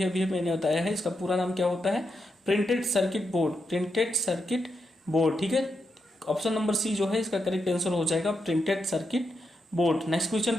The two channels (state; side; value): normal; both; correlation 0.84